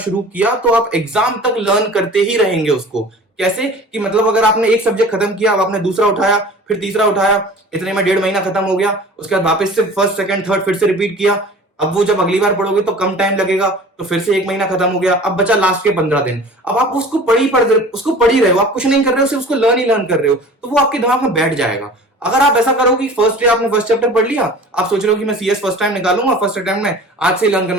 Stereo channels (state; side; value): normal; both; correlation 0.42